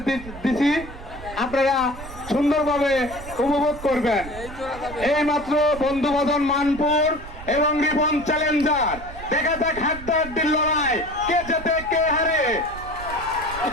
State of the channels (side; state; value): right; noise; rumble, 14 dB below the sound